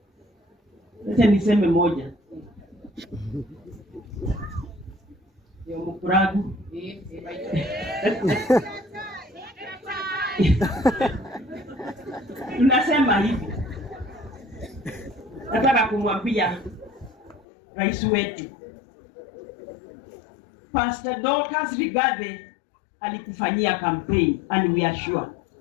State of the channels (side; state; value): right; drops out; at 17.4 s